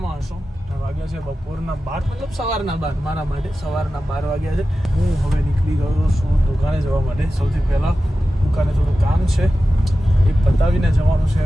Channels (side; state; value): both; normal; correlation 0.94